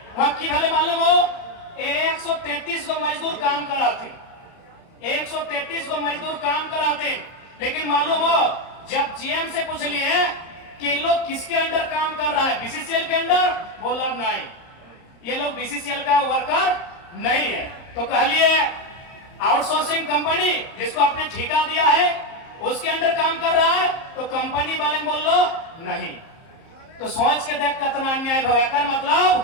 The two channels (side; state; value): right; late; 30 ms